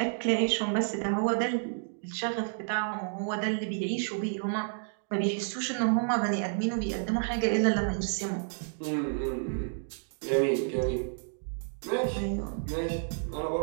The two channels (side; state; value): left; silent; digital silence